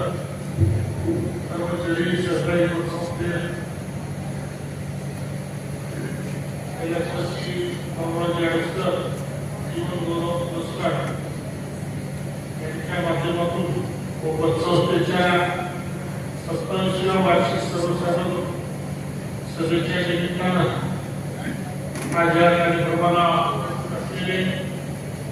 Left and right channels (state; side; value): identical; both; correlation 1.00